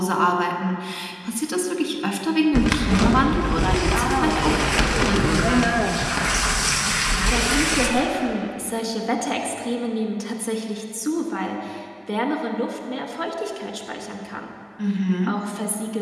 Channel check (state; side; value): identical; both; correlation 1.00